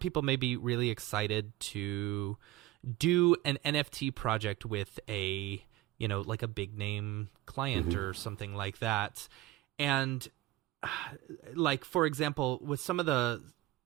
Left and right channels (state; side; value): quieter; left; 15.7 dB